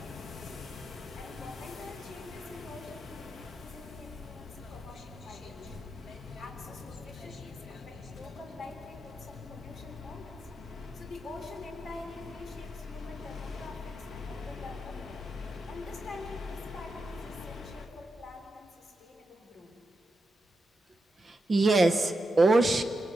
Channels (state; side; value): normal; both; correlation 0.87